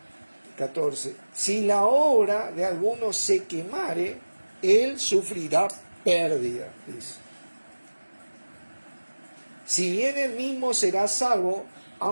14. Si la obra de alguno se quemare, él sufrirá pérdida, dice. Si bien él mismo será salvo,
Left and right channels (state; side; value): inverted; both; correlation -1.00